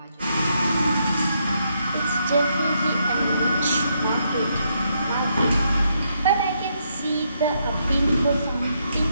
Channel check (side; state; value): both; inverted; correlation -0.77